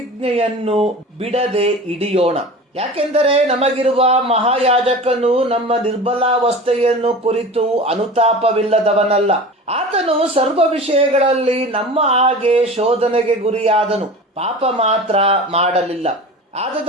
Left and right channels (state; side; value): normal; both; correlation 0.35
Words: ಬಿಡದೆ ಹಿಡಿಯೋಣ. ಯಾಕೆಂದರೆ ನಮಗಿರುವ ಮಹಾಯಾಜಕನು ನಮ್ಮ ನಿರ್ಬಲಾವಸ್ಥೆಯನ್ನು ಕುರಿತು ಅನುತಾಪವಿಲ್ಲದವನಲ್ಲ. ಆತನು ಸರ್ವ ವಿಷಯಗಳಲ್ಲಿ ನಮ್ಮ ಹಾಗೆ ಶೋಧನೆಗೆ ಗುರಿಯಾದನು, ಪಾಪ ಮಾತ್ರ ಮಾಡಲಿಲ್ಲ.